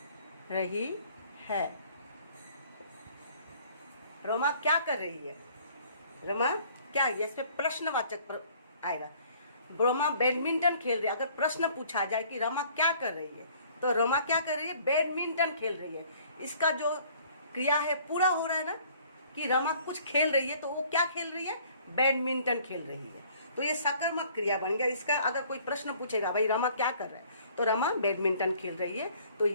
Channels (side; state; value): both; inverted; correlation -0.56